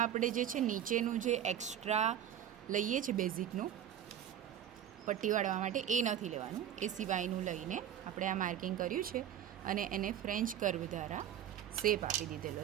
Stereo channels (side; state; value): left; quieter; 10.3 dB